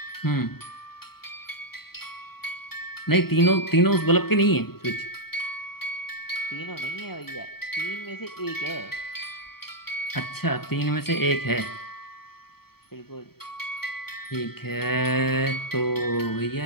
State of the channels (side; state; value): right; late; 0.95 ms